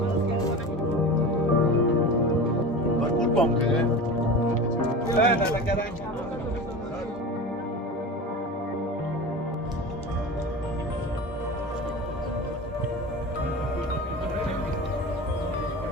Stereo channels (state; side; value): normal; both; correlation 0.31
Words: برکول بام کنه نه کرای